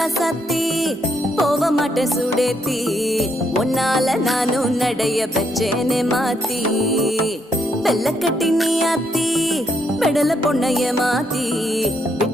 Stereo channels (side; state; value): both; normal; correlation 0.75